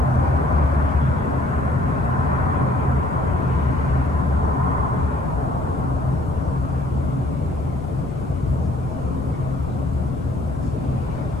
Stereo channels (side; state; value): left; noise; rumble, 9 dB below the sound